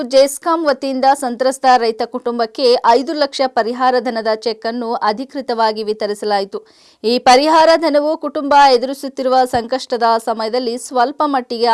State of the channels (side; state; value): both; identical; correlation 1.00